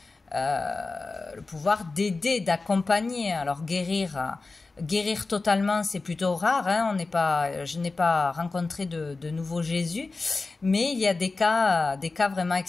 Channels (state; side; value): quieter; right; 3.7 dB